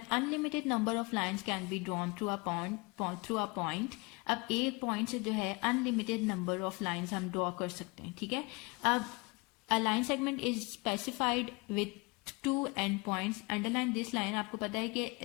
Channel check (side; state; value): right; quieter; 27.4 dB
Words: unlimited number of lines can be drawn through a point। अब एक पॉइंट से जो है अनलिमिटेड नंबर ऑफ लाइंस हम draw कर सकते हैं, ठीक है। अब a line segment is specified with 2 end points। Underline this line. आपको पता है कि